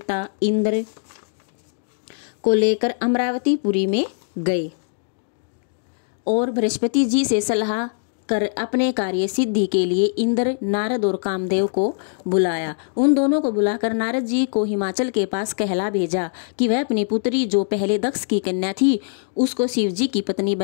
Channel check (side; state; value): right; silent; digital silence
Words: इंद्र को लेकर अमरावतीपुरी में गए और बृहस्पति जी से सलाह कर अपने कार्य सिद्धि के लिए इंद्र, नारद और कामदेव को बुलाया। उन दोनों को बुलाकर नारद जी को हिमाचल के पास कहला भेजा कि वह अपनी पुत्री जो पहले दक्ष की कन्या थी उसको शिव जी की पत्नी